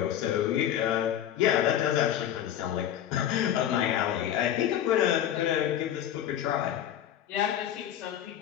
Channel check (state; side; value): quieter; right; 10.8 dB